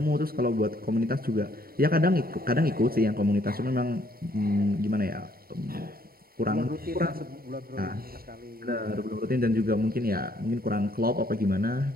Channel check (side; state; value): left; late; 0.43 ms